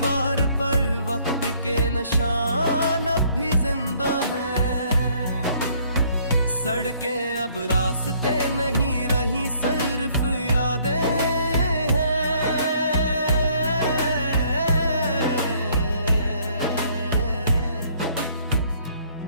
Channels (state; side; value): inverted; both; correlation -0.62